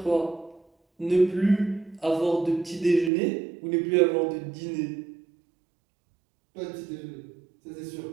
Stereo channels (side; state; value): left; drops out; at 3.1 s